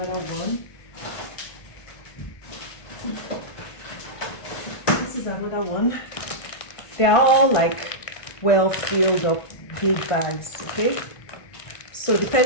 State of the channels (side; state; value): right; late; 1.5 ms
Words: one. This is another one. They're all like well filled up big bags, okay? So